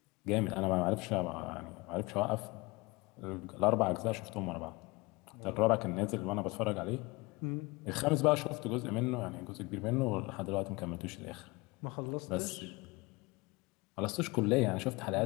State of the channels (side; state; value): right; quieter; 24.5 dB